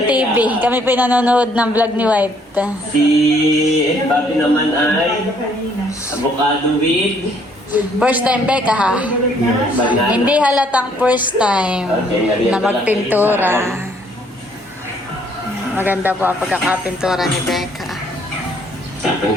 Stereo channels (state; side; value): normal; both; correlation 0.65